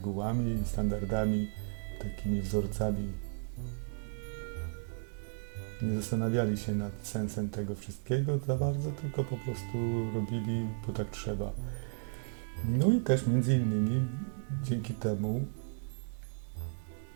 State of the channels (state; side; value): silent; left; 55 dB below the other